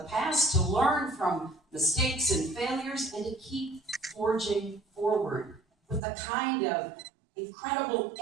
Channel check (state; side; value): drops out; left; at 6.0 s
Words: past, to learn from mistakes and failures, and to keep forging forward with the kind of incredible